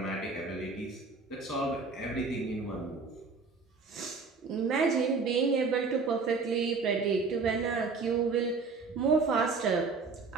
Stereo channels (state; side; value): quieter; left; 4.4 dB